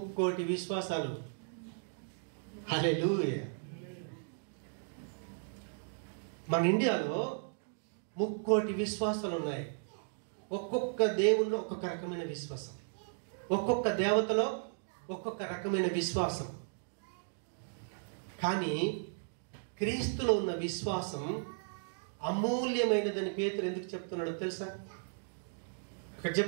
కోటి విశ్వాసాలు. హల్లెలూయా. మన ఇండియాలో 3 కోటి విశ్వాసాలు ఉన్నాయి. ఒక్కొక్క దేవుల్లో ఒక్కొక్క రకమైన విశ్వాసం, ఒక్కొక్క దేవతలో ఒక్కొక్క రకమైన విశ్వాసం. కానీ క్రీస్తులో ఉన్న విశ్వాసం అమూల్యమైనదని పేతురు ఎందుకు చెప్తున్నాడో తెలుసా? అక్కడ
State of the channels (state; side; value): silent; left; digital silence